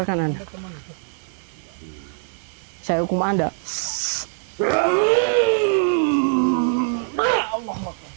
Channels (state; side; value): silent; left; 61 dB below the other